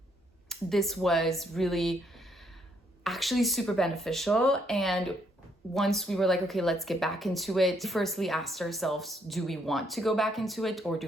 this was really actually super beneficial. And once we were like, okay, let's get back into it, we firstly asked ourselves, do we want to go back into it or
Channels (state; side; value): normal; both; correlation 0.71